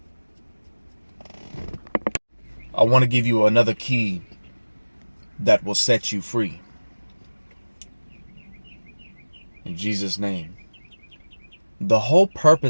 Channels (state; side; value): inverted; both; correlation -1.00